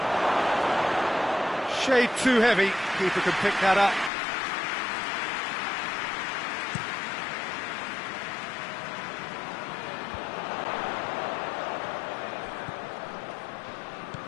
Shade too heavy. Keeper can pick that up.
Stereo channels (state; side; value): drops out; right; at 4.1 s